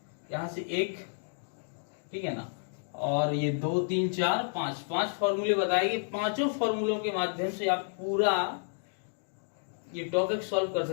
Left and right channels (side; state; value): right; silent; digital silence